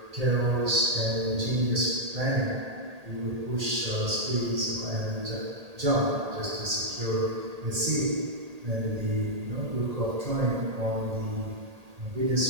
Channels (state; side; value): late; left; 1.8 ms